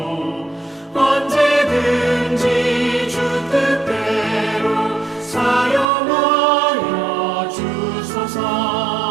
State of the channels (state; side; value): drops out; left; at 5.9 s